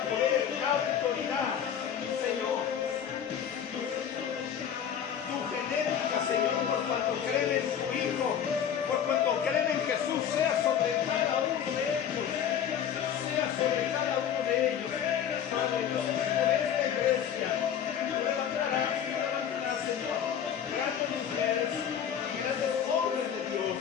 poder, da autoridad. Señor, genética, Señor, por cuanto creen en su Hijo, por cuanto creen en Jesús, sea sobre cada uno de ellos, sea sobre cada uno de ellos. Padre Dios, por esta iglesia, levantarás, Señor, grandes mujeres, grandes hombres de Dios,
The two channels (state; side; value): quieter; right; 8.8 dB